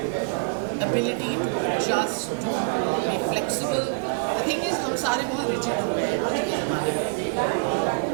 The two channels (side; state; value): left; quieter; 33.7 dB